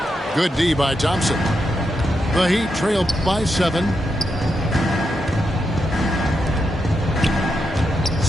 Good D by Thompson. The Heat trail by 7.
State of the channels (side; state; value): both; normal; correlation 0.84